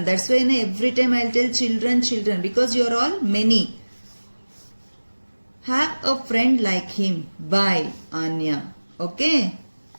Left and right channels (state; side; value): inverted; both; correlation -1.00